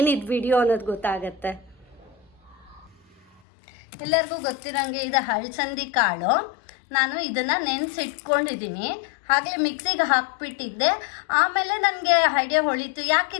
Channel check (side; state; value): right; drops out; at 3.4 s